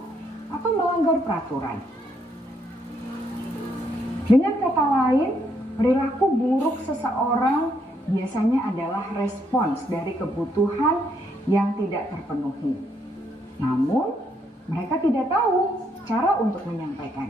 atau melanggar peraturan. Dengan kata lain, perilaku buruk seseorang biasanya adalah respons dari kebutuhan yang tidak terpenuhi. Namun, mereka tidak tahu cara untuk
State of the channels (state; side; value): normal; both; correlation 0.73